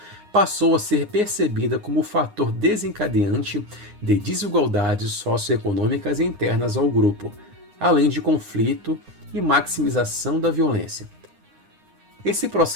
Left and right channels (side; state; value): left; late; 9.7 ms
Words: passou a ser percebida como fator desencadeante de desigualdades socioeconômicas internas ao grupo, além de conflito e maximização da violência. Esse